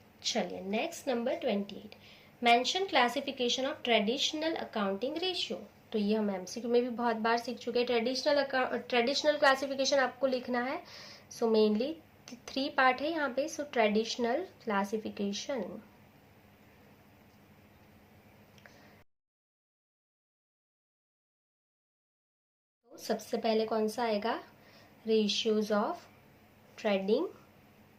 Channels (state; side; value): identical; both; correlation 1.00